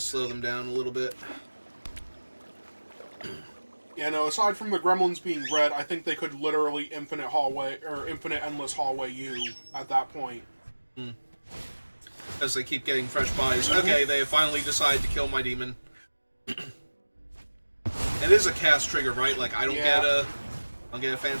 them down a little bit. Yeah, no, aside from the gremlins being red, I think they could literally infinite hallway, or infinite endless hallway you at that point. As they keep getting fresh buys. Okay, they finally decide to kill my demon. It is a cast trigger, right? Like, I don't get a... I'll get a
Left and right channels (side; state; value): both; inverted; correlation -1.00